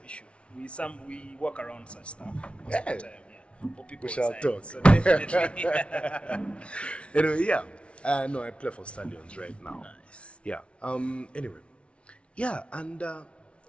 issue. We work around such stuff most of Yeah. the time. Yeah, for people We shall inside. talk. So definitely. Anyway, yeah. No, I play for Stallions right now. Nice. Yeah. Anyway, yeah, and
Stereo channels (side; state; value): right; late; 0.060 ms